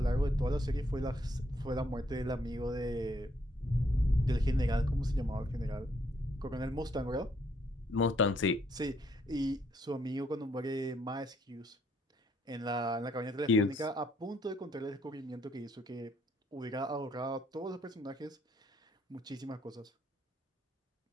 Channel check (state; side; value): normal; both; correlation 0.70